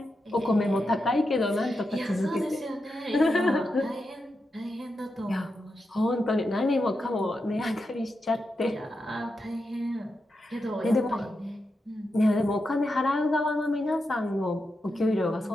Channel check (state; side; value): normal; both; correlation 0.87